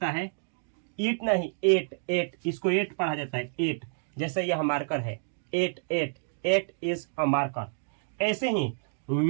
है ईट, नहीं एट, इसको एट पढ़ा जाता है, एट। जैसे यह मार्कर है, एट इज अ मार्कर। ऐसे ही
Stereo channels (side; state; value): left; silent; digital silence